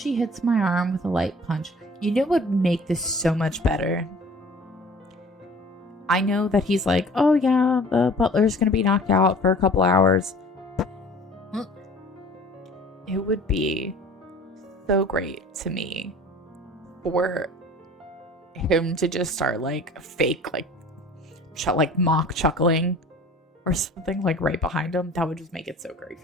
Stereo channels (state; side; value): normal; both; correlation 0.47